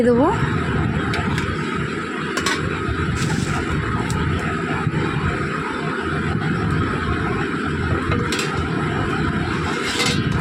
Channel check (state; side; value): identical; both; correlation 1.00